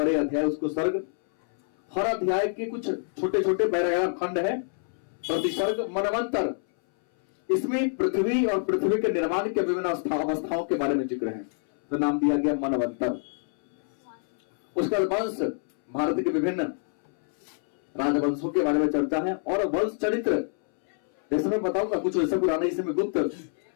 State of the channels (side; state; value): right; silent; 61 dB below the other